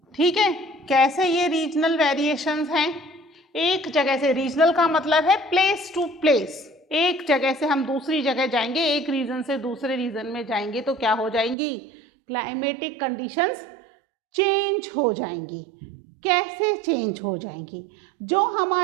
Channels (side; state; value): left; drops out; at 11.6 s